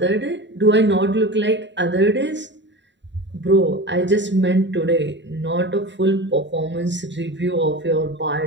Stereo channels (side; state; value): left; late; 0.52 ms